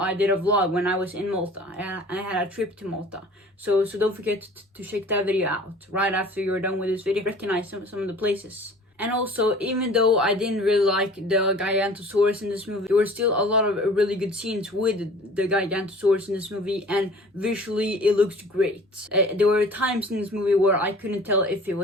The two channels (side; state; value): both; normal; correlation 0.47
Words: did a vlog when I was in Malta. I had a trip to Malta. So don't forget to check that video out right after you're done with this video. Recognize some of the places And also, even though I didn't really like the Gigantosaurus in this movie, there were still a lot of really good scenes with the Gigantosaurus in this movie, and visually it looks great. There were times in this movie where I couldn't tell if it